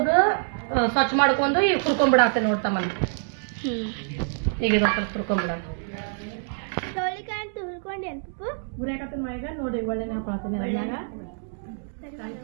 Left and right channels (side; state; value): left; silent; digital silence